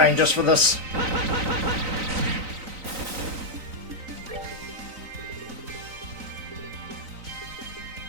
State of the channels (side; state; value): left; late; 3.9 ms